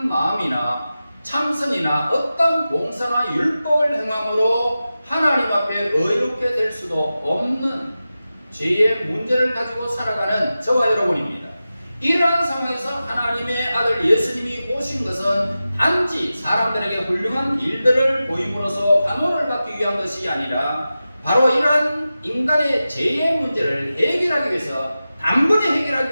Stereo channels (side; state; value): both; inverted; correlation -0.94